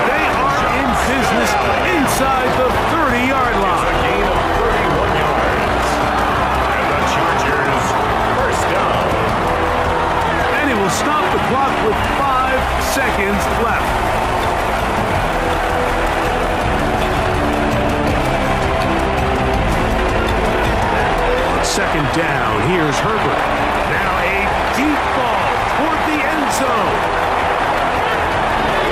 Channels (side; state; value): both; identical; correlation 1.00